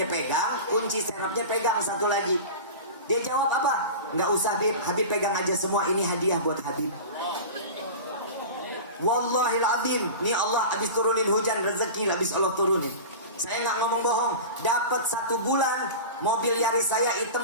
pegang, kunci serepnya pegang satu lagi. Dia jawab apa? Nggak usah Habib, Habib pegang aja semua. Ini hadiah buat Habib. Wallahil azim, nih Allah habis turunin hujan rezeki, habis Allah turunin. Saya nggak ngomong bohong. Dapat 1 bulan mobil Yaris saya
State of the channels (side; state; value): both; inverted; correlation -0.31